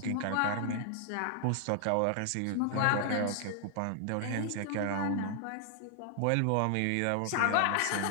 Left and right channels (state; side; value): different; both; correlation 0.00